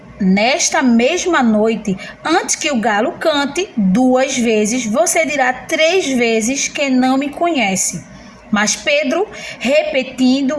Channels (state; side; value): identical; both; correlation 1.00